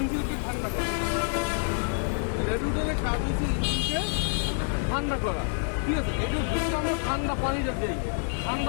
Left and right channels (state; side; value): silent; right; 59 dB below the other